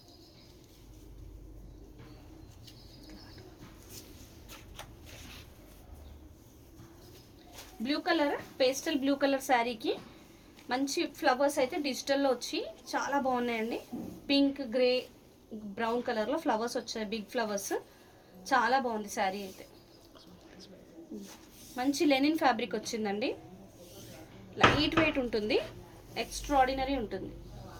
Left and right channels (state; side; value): identical; both; correlation 1.00